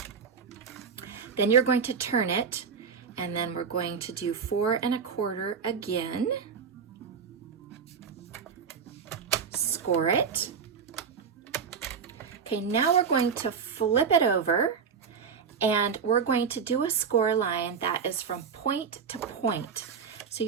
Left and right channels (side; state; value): left; quieter; 6.3 dB